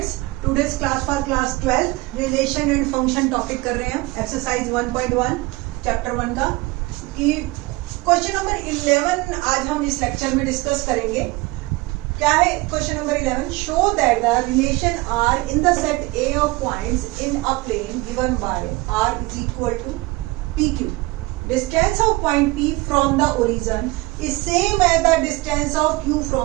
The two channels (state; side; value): quieter; left; 22.2 dB